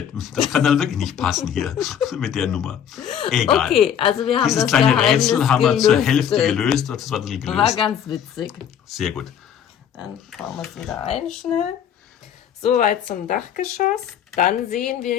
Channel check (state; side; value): quieter; right; 8.9 dB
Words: Das kann dann wirklich nicht passen hier mit der Nummer. Egal. Okay, also wir haben Dieses das kleine Geheimnis Rätsel haben wir zur gelüftet. Hälfte gelöst. Das war ein bisschen War gelöst. ganz witzig. Sehr gut. Dann bauen wir es wieder ein schnell. Soweit zum Dachgeschoss. Dann sehen